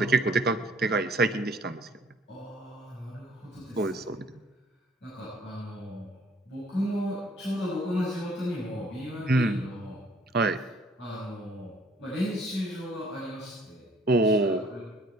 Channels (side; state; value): both; normal; correlation 0.59